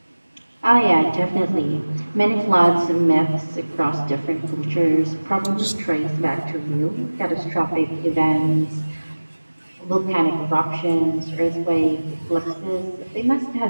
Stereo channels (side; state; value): both; inverted; correlation -1.00